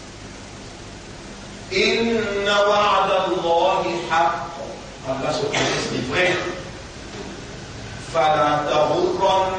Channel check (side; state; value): both; identical; correlation 1.00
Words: Inna wa'da Allahi haqq. Allah se connaît des vrais. Fala